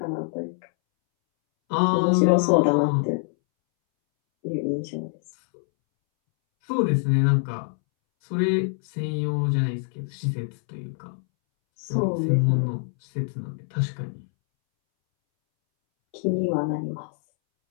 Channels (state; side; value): silent; right; 62 dB below the other